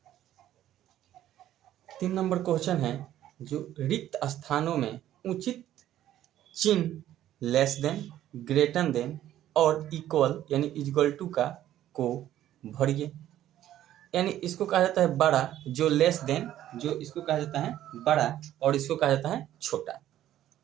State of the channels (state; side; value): quieter; left; 12.5 dB